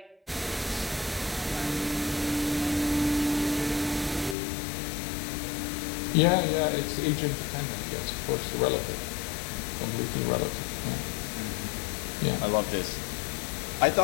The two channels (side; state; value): right; drops out; at 4.4 s